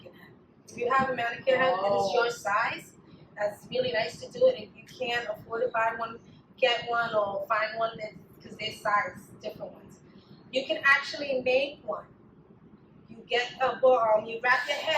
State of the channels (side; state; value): both; identical; correlation 1.00